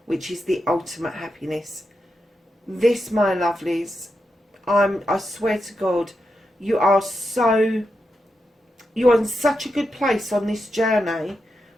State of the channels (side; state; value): both; normal; correlation 0.87